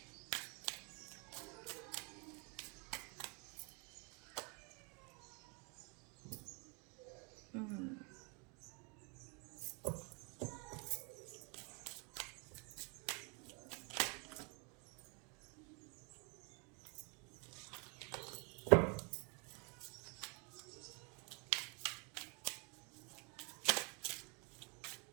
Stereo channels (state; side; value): quieter; left; 33.6 dB